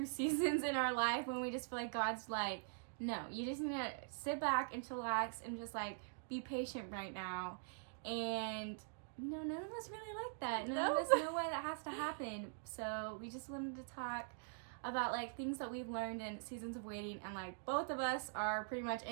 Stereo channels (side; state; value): left; silent; digital silence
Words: seasons in our life when we just feel like God's like, no, you just need to sit back and chillax and just like be patient right now. And none of us really like that. None of us know why that has to happen. So we just wanted to talk about like things that we've learned in seasons of waiting, and like both of us are pretty much